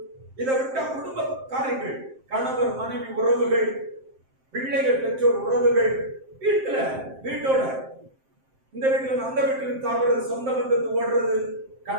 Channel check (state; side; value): late; left; 7.6 ms